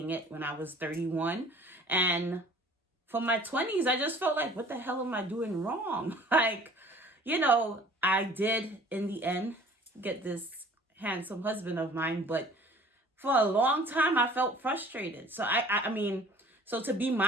it, when I was 31. And for my 20s, I just felt like, what the hell am I doing wrong? I did, in the end, get this handsome husband of mine, but for a long time, I felt frustrated. So, so to be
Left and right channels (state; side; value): normal; both; correlation 0.50